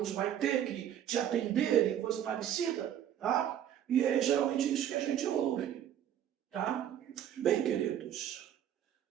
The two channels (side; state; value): left; quieter; 10.3 dB